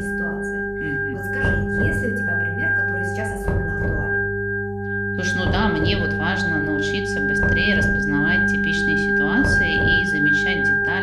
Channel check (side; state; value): both; identical; correlation 1.00